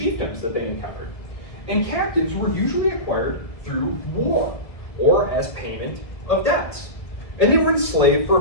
that they encountered. And captives were usually acquired through war or as payment of debts. And they were enslaved for a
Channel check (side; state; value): right; late; 1.6 ms